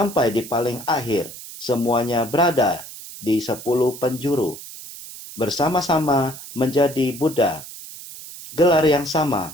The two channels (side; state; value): right; noise; hiss, 14 dB below the sound